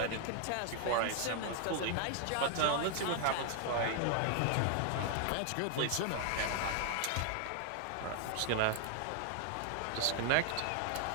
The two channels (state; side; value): different; both; correlation 0.00